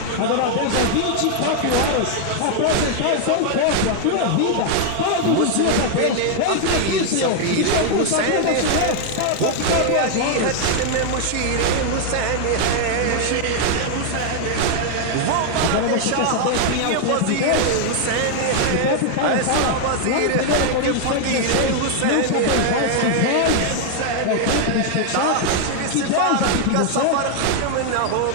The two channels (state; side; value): different; both; correlation 0.00